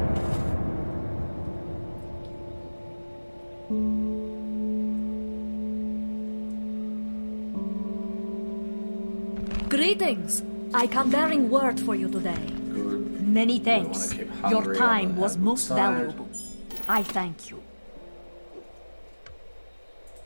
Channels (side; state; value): both; inverted; correlation -1.00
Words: Greetings. I come bearing word for you today. Good. Many We wanna thanks. keep Your Hungary time on the was good most side. valuable. I thank you.